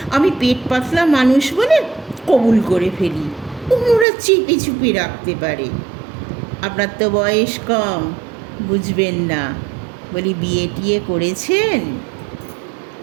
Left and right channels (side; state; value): left; drops out; at 4.0 s